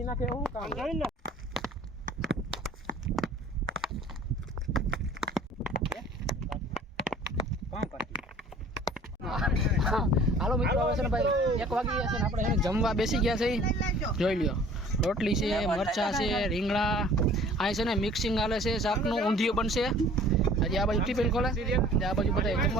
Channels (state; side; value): normal; both; correlation 0.50